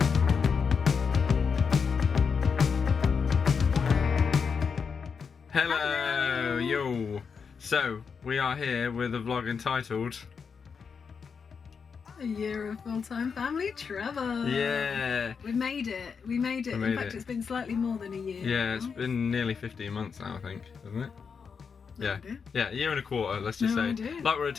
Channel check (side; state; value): right; quieter; 5.9 dB